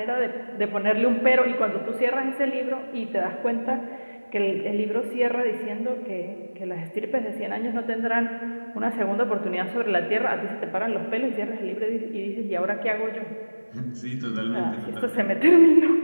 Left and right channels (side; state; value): both; inverted; correlation -1.00